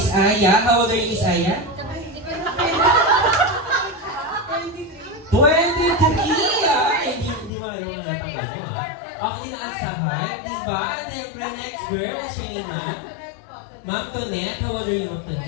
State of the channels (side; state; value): right; drops out; at 7.5 s